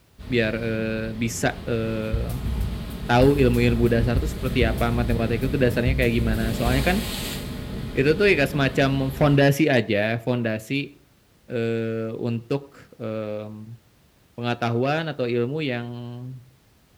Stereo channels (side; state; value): both; identical; correlation 1.00